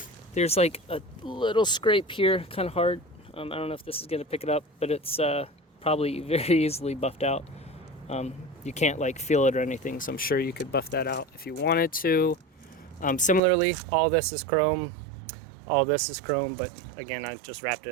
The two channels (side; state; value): left; drops out; at 13.4 s